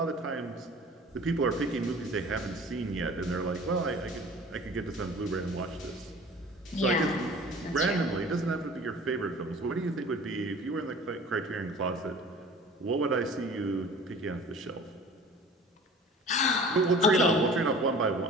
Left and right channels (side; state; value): both; normal; correlation 0.44